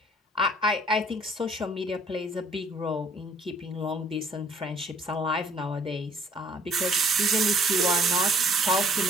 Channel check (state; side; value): normal; both; correlation 0.59